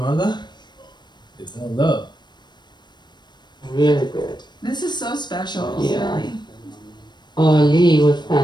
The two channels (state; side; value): late; right; 0.21 ms